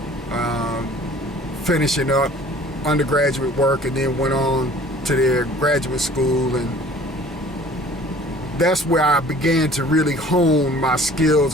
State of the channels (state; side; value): normal; both; correlation 0.50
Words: finishing up undergraduate work, and then went on to their graduate school, and that's where I began to really hone my skills